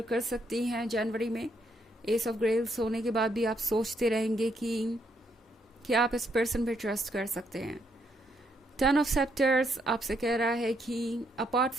कर सकती हैं जनवरी में। एस ऑफ ग्रेल्स होने के बाद भी आप सोचते रहेंगे कि क्या आप इस पर्सन पे ट्रस्ट कर सकते हैं। टेन ऑफ सेप्टर्स आपसे कह रहा है कि अपार्ट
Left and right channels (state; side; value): normal; both; correlation 0.75